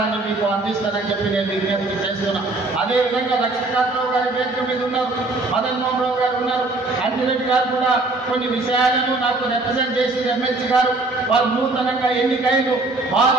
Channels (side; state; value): left; quieter; 3.1 dB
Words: మీకు అందిస్తానని చెప్పి నేను విజ్ఞప్తి చేస్తున్నా. అదేవిధంగా లక్ష్మీకాంతరావు గారి వేదిక మీద ఉన్నారు, మదన్ మోహన్ రావు గారు ఉన్నారు, అంజిరెడ్డి గారు కూడా కొన్ని విషయాలను నాకు రిప్రజెంట్ చేసిన ఎమ్మెల్సీ గారు వారు నూతనంగా ఎన్నికైన